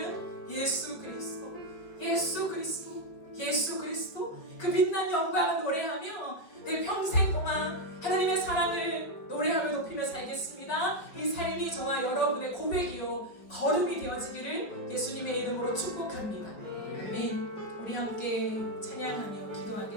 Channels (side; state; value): right; late; 5.2 ms